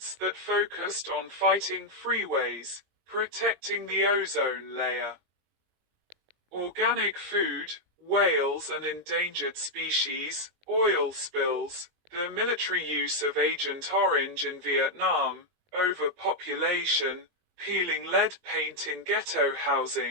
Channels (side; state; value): left; late; 20 ms